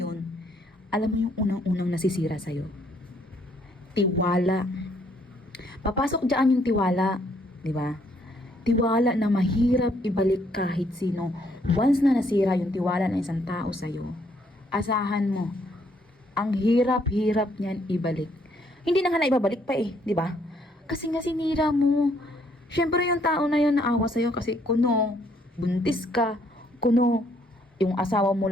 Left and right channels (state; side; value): normal; both; correlation 0.68